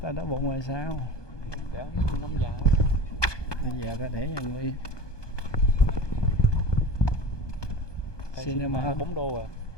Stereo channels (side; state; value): right; late; 1.2 ms